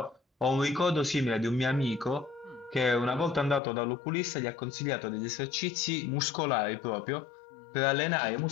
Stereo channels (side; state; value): right; drops out; at 3.6 s